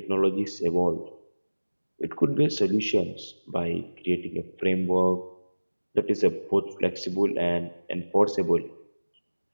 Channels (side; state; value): both; inverted; correlation -1.00